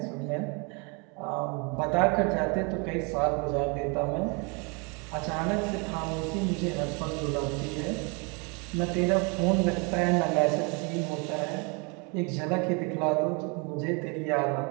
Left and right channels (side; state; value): left; quieter; 32.2 dB